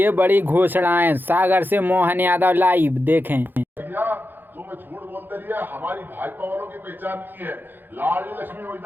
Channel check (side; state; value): left; late; 0.093 ms